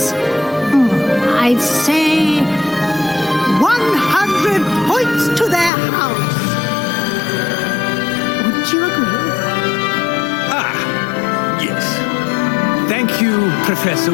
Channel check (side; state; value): right; drops out; at 5.7 s